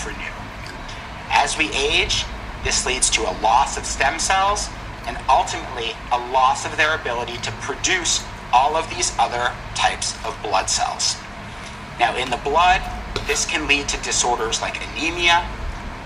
As we age, this leads to a loss of stem cells and ultimately a loss of their ability to produce all of these other types of blood cells. Now, in the blood, this can lead to disorders like anemia,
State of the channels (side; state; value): both; identical; correlation 1.00